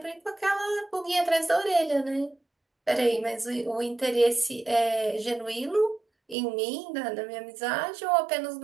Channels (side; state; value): left; drops out; at 6.4 s